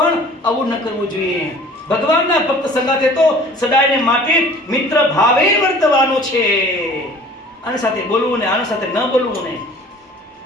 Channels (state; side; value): normal; both; correlation 0.48